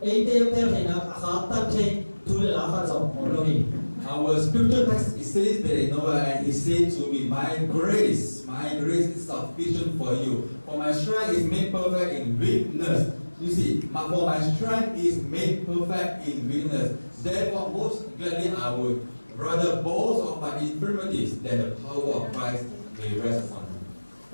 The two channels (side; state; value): both; inverted; correlation -1.00